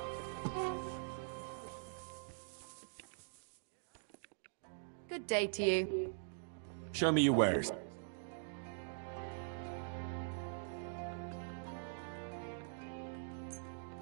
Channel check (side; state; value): left; silent; digital silence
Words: Good day to you. Show me your wares.